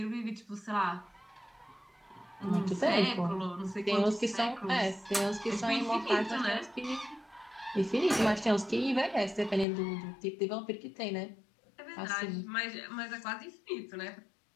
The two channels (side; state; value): right; drops out; at 9.7 s